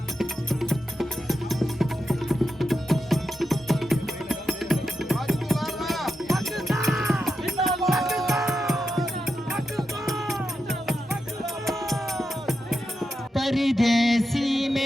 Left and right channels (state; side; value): normal; both; correlation 0.88